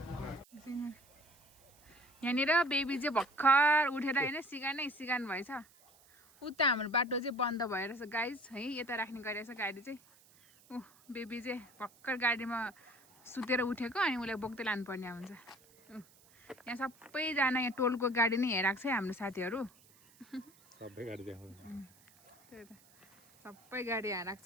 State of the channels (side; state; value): right; noise; hiss, 27 dB below the sound